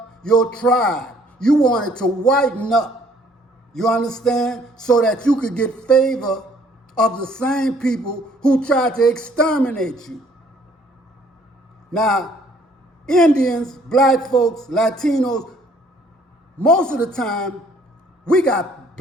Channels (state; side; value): normal; both; correlation 0.61